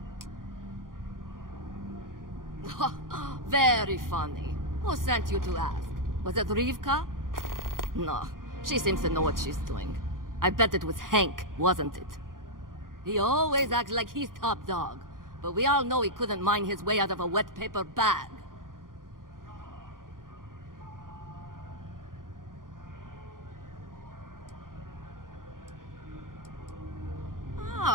Very funny. Who sent you to ask? Was it Rivka? No, she seems to know what she's doing. I bet it was Hank, wasn't it? He always acts like he's top dog, but we all know he couldn't mine his way out of a wet paper bag.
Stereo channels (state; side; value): late; left; 0.90 ms